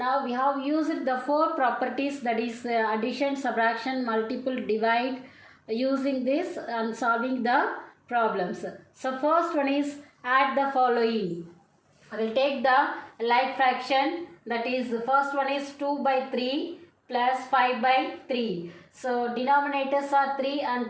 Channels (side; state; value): both; identical; correlation 1.00